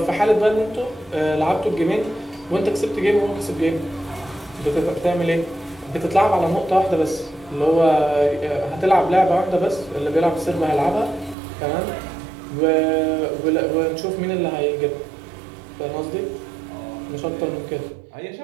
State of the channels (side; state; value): left; drops out; at 11.4 s